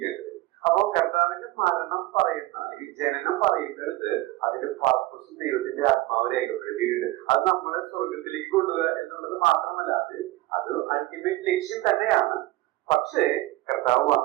അപ്പോ കർത്താവിന്റെ മരണം പറയുന്ന, അല്ലെങ്കിൽ ജനനം പറയുന്നിടത്ത് അതിന്റെ പർപ്പസും ദൈവത്തിന്റെ ആത്മാവ് രേഖപ്പെടുത്തിയിട്ടുണ്ട്. അത് നമ്മളെ സ്വർഗത്തിലേക്ക് കൊണ്ടുപോകുക എന്നുള്ളത് മാത്രമല്ല, അത് അൾട്ടിമേറ്റ് ലക്ഷ്യം തന്നെയാണ്. പക്ഷേ കർത്താവ്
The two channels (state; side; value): quieter; left; 17.8 dB